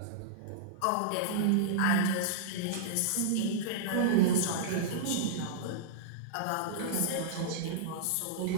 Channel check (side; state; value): both; different; correlation -0.03